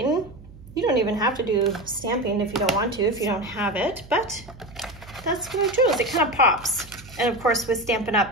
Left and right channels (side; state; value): right; noise; hum, 20 dB below the sound